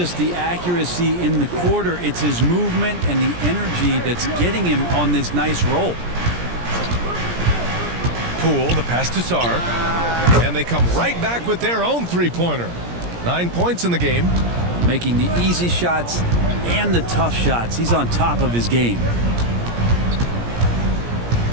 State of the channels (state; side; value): late; left; 17 ms